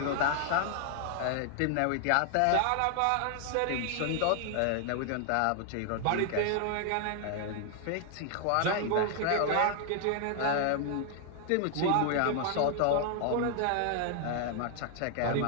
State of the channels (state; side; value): different; both; correlation 0.00